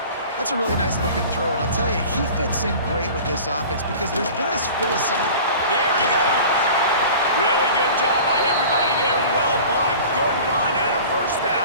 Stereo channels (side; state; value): both; inverted; correlation -0.41